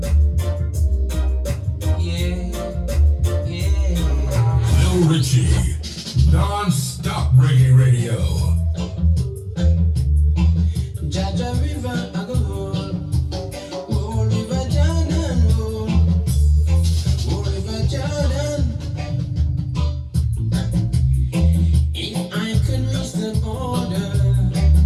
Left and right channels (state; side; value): identical; both; correlation 1.00